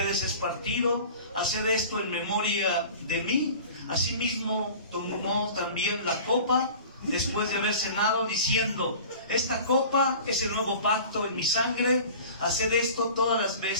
es partido, haced esto en memoria de mí. Asimismo tomó también la copa después de haber cenado, diciendo, esta copa es el nuevo pacto en mi sangre, haced esto todas las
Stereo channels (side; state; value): both; inverted; correlation -0.40